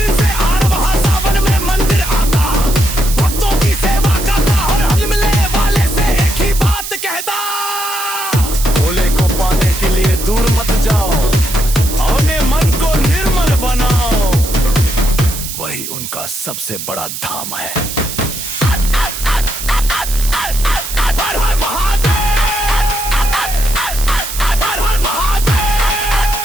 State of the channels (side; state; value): right; noise; hiss, 7 dB below the sound